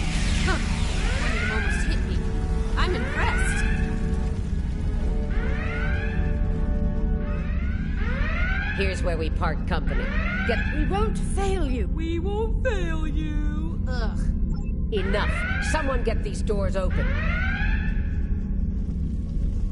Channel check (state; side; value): identical; both; correlation 1.00